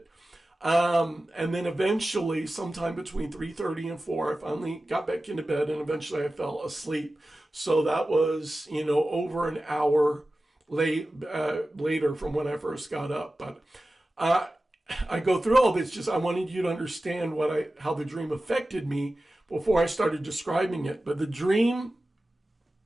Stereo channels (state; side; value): normal; both; correlation 0.95